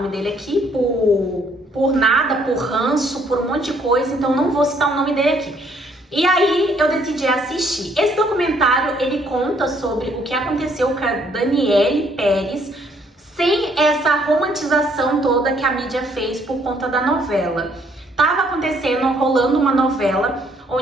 dele aqui por nada, por ranço, por um monte de coisa, então não vou citar o nome dele aqui. E aí eu decidi assistir. Esse documentário, ele conta sobre o que aconteceu com a Daniele Pérez, sem essa romantização toda que a mídia fez por conta da novela. Tava acontecendo, rolando uma novela,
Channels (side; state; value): both; normal; correlation 0.66